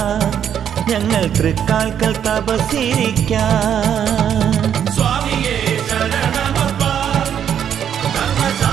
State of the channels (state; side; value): quieter; left; 9.0 dB